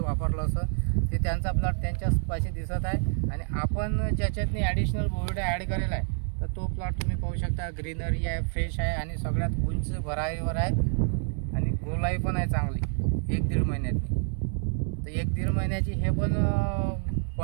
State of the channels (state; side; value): silent; left; 59 dB below the other